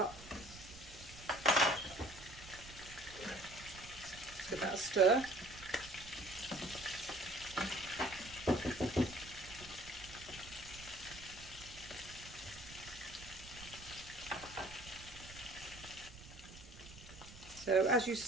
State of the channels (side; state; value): right; noise; rumble, 16 dB below the sound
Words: Give that a stir. So as you're